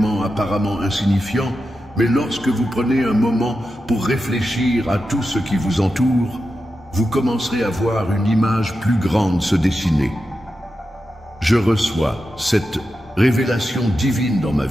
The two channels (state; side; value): normal; both; correlation 0.90